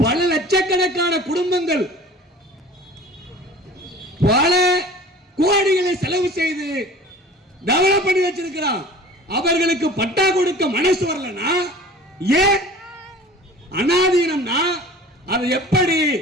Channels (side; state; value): both; normal; correlation 0.43